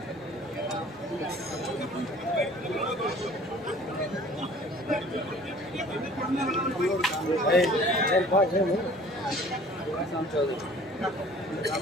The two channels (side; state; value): both; normal; correlation 0.50